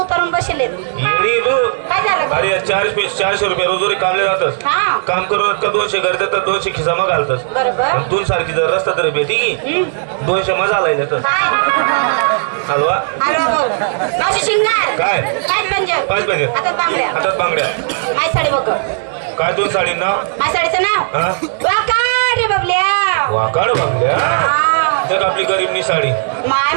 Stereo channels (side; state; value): left; silent; digital silence